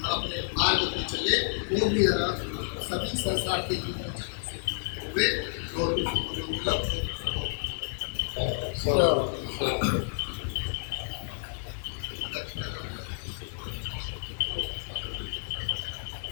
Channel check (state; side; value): silent; right; 58 dB below the other